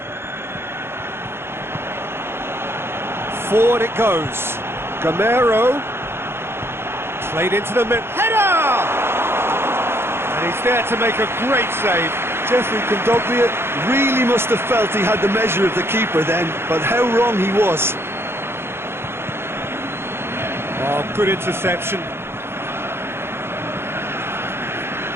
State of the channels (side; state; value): left; late; 0.12 ms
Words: Forward it goes. Gameiro. Played into the mid. Header! And he's there to make a great save. Geoffrey Kondogbia really must have felt he had the measure of the keeper then, but how wrong he was. Oh, good interception.